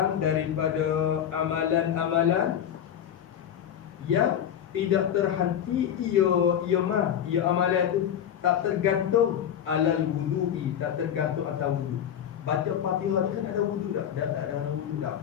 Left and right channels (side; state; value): right; quieter; 9.5 dB